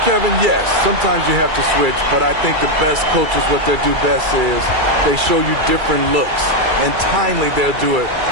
Kevin, yes. Sometimes you have to switch, but I think the best coaches, what they do best is they show you different looks. And timely, they'll do it.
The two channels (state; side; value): late; left; 2.3 ms